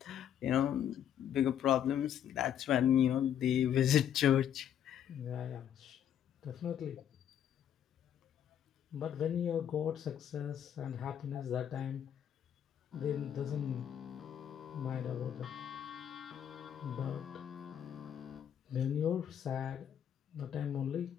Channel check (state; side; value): quieter; right; 9.6 dB